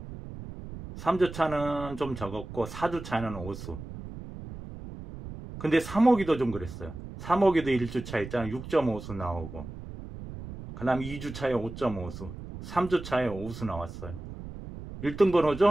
3주차는 좀 적었고 4주차는 5수. 근데 3호기도 좀 그랬어요. 3호기도 1주차 있잖아요. 6.5수 나오고, 그 다음 2주차에 5.5수, 3주차에 5수 나왔어요. 1등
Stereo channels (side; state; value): right; noise; rumble, 11 dB below the sound